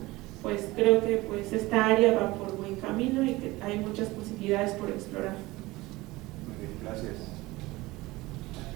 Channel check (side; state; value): left; quieter; 20.2 dB